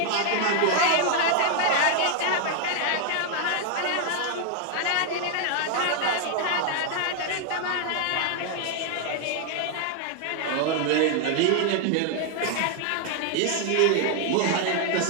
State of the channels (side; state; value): both; different; correlation 0.00